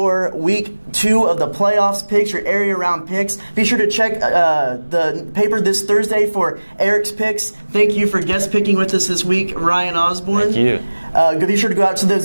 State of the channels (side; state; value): both; inverted; correlation -1.00